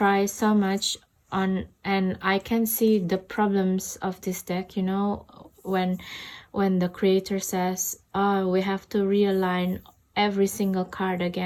so much on, and I can see the problems of this deck, you know, when the creator says, oh, we have to realign every single card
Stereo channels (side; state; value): both; identical; correlation 1.00